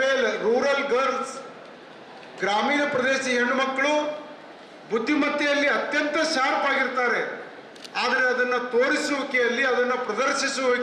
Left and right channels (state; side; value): identical; both; correlation 1.00